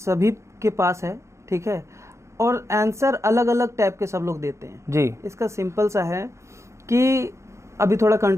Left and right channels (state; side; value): late; left; 0.14 ms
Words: के पास है, ठीक है, और आंसर अलग अलग टाइप के सब लोग देते हैं जी। इसका सिंपल सा है कि अभी थोड़ा